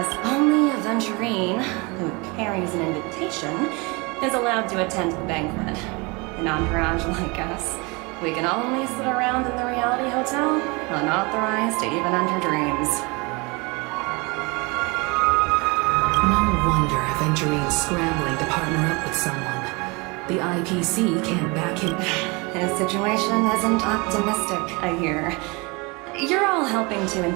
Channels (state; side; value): quieter; left; 27.6 dB